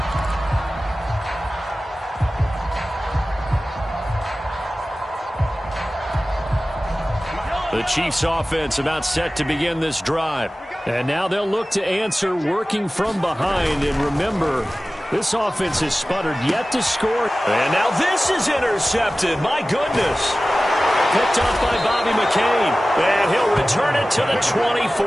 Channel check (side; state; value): both; normal; correlation 0.96